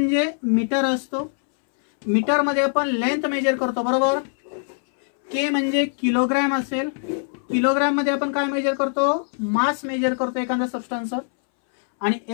मीटर असतो. मीटर मध्ये आपण लेंथ मेजर करतो, बरोबर. के म्हणजे किलोग्रॅम असेल. किलोग्रॅम मध्ये आपण काय मेजर करतो? मास मेजर करतो एखाद्या सबस्टन्स. आणि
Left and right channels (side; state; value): right; silent; 64 dB below the other